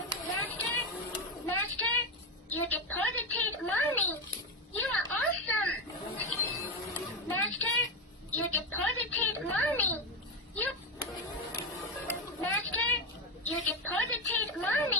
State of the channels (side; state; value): both; normal; correlation 0.12